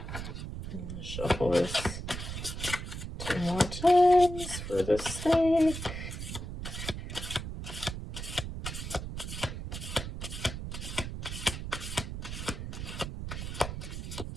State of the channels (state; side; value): noise; right; rumble, 6 dB below the sound